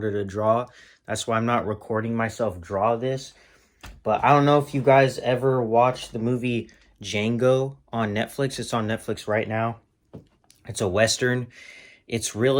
to draw. That's why I'm not recording myself draw this. But I don't know if you guys ever watched the movie Django on Netflix. It's on Netflix right now. It's a Western. It's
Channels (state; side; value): identical; both; correlation 1.00